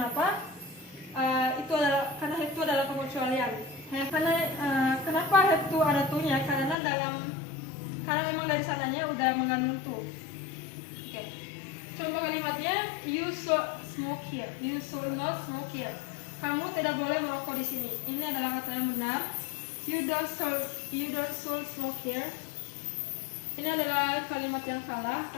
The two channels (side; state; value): right; drops out; at 6.8 s